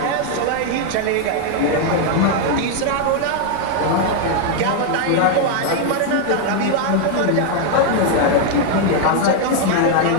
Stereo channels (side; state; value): both; different; correlation 0.00